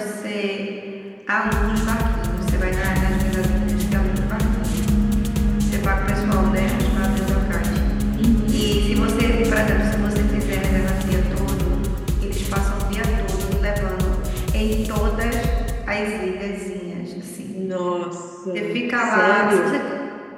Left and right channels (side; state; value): both; identical; correlation 1.00